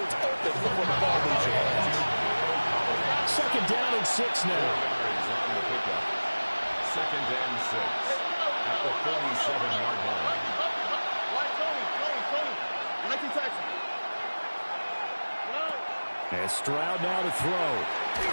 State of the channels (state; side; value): inverted; both; correlation -1.00